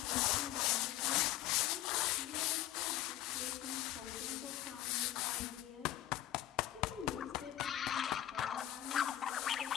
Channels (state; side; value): quieter; right; 13.4 dB